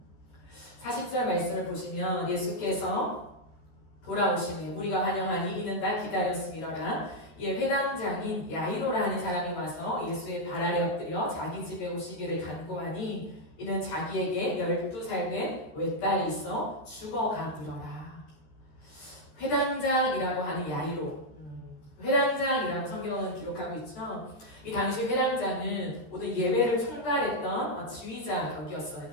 40절 말씀을 보시면 예수께서 돌아오시니 우리가 환영하니 이는 다 기다렸음이로라. 이에 회당장인 야이로라는 사람이 와서 예수의 발 아래 엎드려 자기 집에 오시기를 간구하니 이는 자기에게 12살 된 외딸이 있어 죽어가니라. 회당장이라고 하는 야이로. 회당장이라고 성경은 기록하고 있죠. 이 당시 회당장은 모든 예배를 총괄했던 지휘자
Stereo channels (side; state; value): right; late; 13 ms